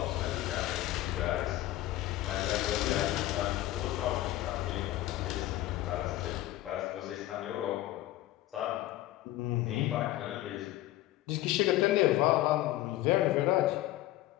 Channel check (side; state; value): right; quieter; 15.4 dB